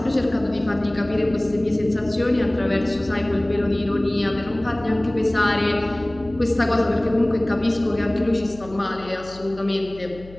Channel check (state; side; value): noise; left; hum, 19 dB below the sound